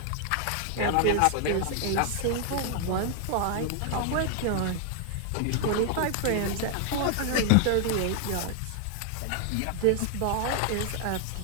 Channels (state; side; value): different; both; correlation 0.00